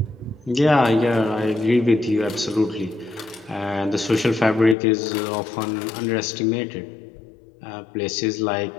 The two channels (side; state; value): right; drops out; at 4.8 s